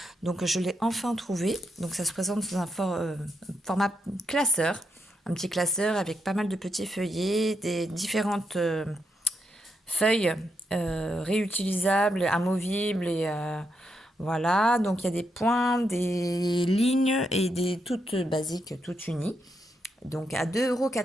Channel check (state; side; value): normal; both; correlation 0.82